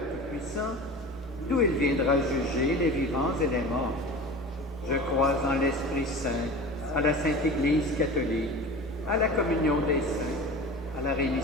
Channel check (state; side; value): normal; both; correlation 0.34